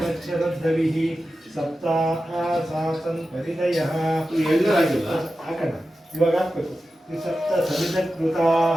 ಶರದ್ಧವಿಃ ಸಪ್ತಾಸಾಸನ್ ಪರಿದಯಃ. ಹಾಕೋಣ ಇವಾಗ ಹಾಕ್ಬೇಕು. ಸಪ್ತ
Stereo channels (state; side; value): normal; both; correlation 0.93